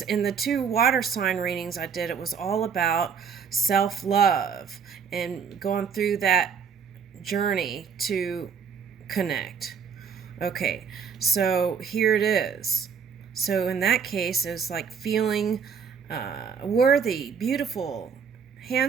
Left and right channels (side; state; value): left; quieter; 6.6 dB